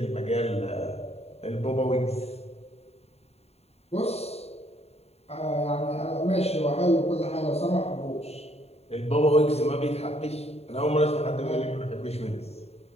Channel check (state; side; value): late; right; 0.30 ms